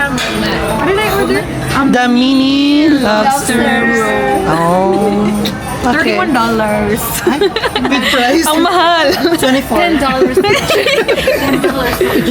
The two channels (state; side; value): identical; both; correlation 1.00